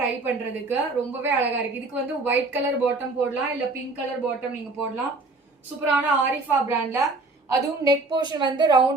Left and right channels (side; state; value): left; quieter; 3.3 dB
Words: டை பண்றதுக்கு. ரொம்பவே அழகா இருக்கு. இதுக்கு வந்து ஒயிட் கலர் பாட்டம் போடலாம், இல்ல பிங்க் கலர் பாட்டம் நீங்க போடலாம். சூப்பரான ஆரிஃபா பிராண்ட்ல, அதுவும் நெக் போர்ஷன் வந்து